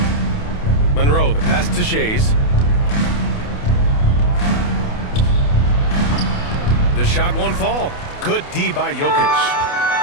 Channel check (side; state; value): right; late; 28 ms